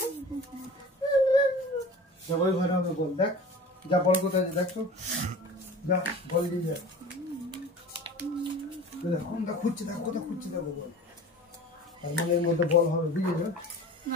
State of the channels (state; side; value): normal; both; correlation 0.39